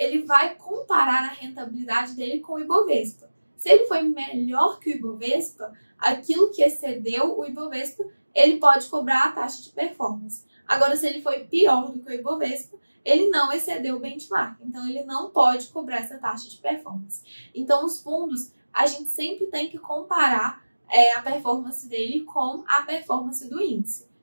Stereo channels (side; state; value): both; inverted; correlation -1.00